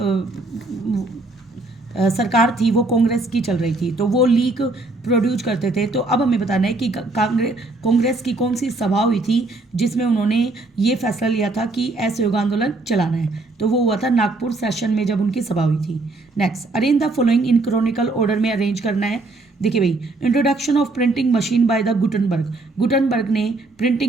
सरकार थी वो कांग्रेस की चल रही थी, तो वो लीक प्रोड्यूस करते थे। तो अब हमें बताना है कि कांग्रेस की कौन सी सभा हुई थी जिसमें उन्होंने ये फैसला लिया था कि असहयोग आंदोलन चलाना है। तो वो हुआ था नागपुर सेशन में जब उनकी सभा हुई थी। Next, arrange the following in chronicle order में अरेंज करना है। देखिए भाई, introduction of printing machine by the Gutenberg ने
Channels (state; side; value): quieter; left; 3.1 dB